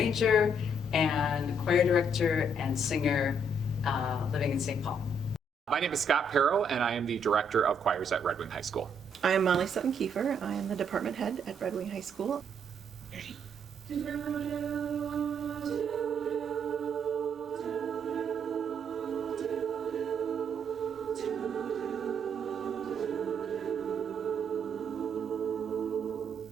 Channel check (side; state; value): both; normal; correlation 0.71